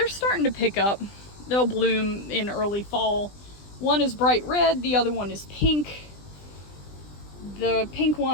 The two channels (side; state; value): right; late; 20 ms